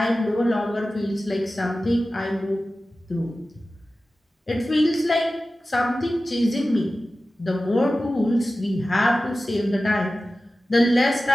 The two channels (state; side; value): normal; both; correlation 0.95